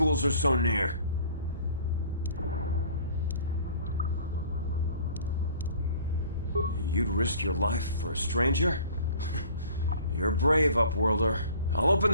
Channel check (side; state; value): both; inverted; correlation -0.50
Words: are so near. You'd risk your life for a stranger? You're brave, Upworlder. I'll open